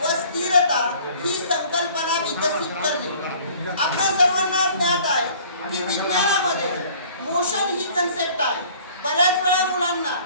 स्थिरता ही संकल्पना विकसित करणे। आपल्या सर्वांना ज्ञात आहे की विज्ञानामध्ये मोशन ही कन्सेप्ट आहे। बऱ्याच वेळा मुलांना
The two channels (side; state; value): both; inverted; correlation -0.52